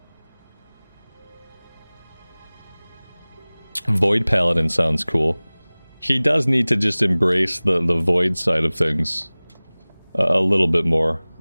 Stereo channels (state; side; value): inverted; both; correlation -1.00